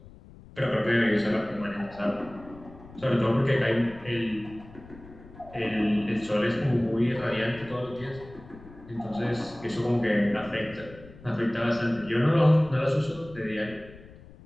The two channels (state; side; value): noise; left; rumble, 20 dB below the sound